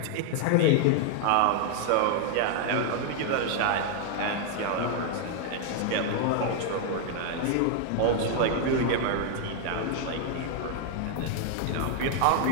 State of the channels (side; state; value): both; different; correlation 0.00